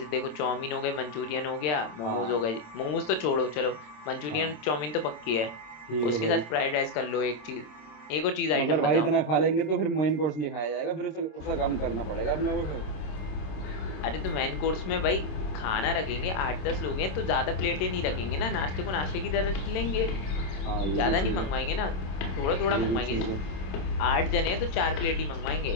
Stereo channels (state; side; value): late; right; 27 ms